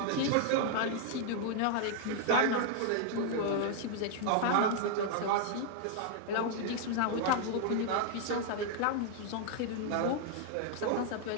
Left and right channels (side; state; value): both; different; correlation -0.01